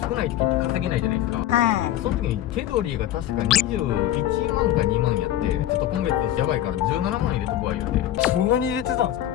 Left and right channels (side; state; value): right; quieter; 12.7 dB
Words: 少ない時って稼げないじゃないですか。はい。その時に手取りが確か21万か2万やって、ちょっと今月やばいから17万入れとこわ言うて。そんなに入れてたんですか？